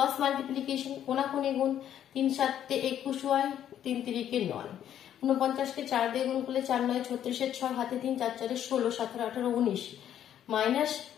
মাল্টিপ্লিকেশন, কোনাকুনি গুণ, 3 × 7 = 21y, 3 × 3 = 9, 49 কে 4 দিয়ে গুণ করলে 4 × 9 = 36, 6 হাতে 3, 4 × 4 = 16, 17, 18, 19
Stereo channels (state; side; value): quieter; right; 10.4 dB